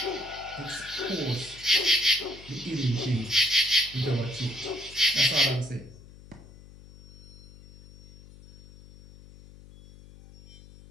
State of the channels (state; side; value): noise; left; hum, 20 dB below the sound